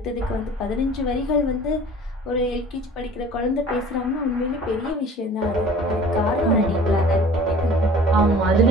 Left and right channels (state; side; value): normal; both; correlation 0.46